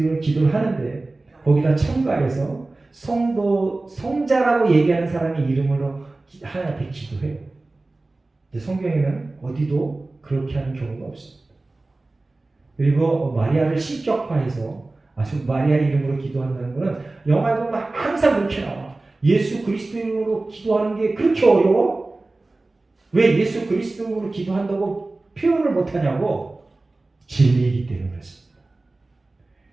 기도를 하는데 거기다 첨가해서 성자라고 얘기하는 사람의 이름으로 하나님 앞에 기도해요. 근데 성경에는 어디도 그렇게 하는 경우가 없습니다. 그리고 마리아를 신격화해서 아주 마리아 이름으로 기도한다는 것은 영화에 보면 항상 그렇게 나와. 예수 그리스도 이름으로 기도하는 게 그렇게 어려워? 왜 예수 그리스도로 기도한다고 표현을 못하냐고? 진리이기 때문에 그렇습니다.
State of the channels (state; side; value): quieter; left; 3.1 dB